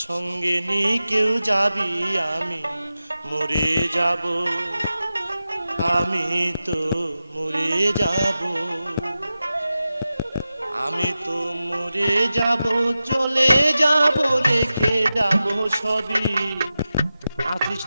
সঙ্গে নি কেউ যাবি, আমি মরে যাব, আমি তো মরে যাব, আমি তো মরে যাব, চলে যাব, রেখে যাব সবই। আছিস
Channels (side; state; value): both; inverted; correlation -0.93